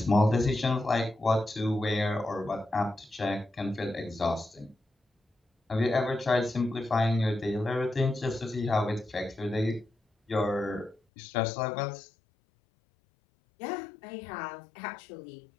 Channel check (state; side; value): drops out; right; at 11.0 s